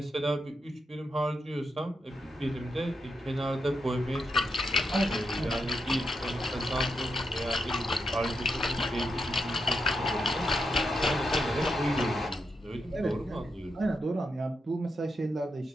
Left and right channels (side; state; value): both; normal; correlation 0.84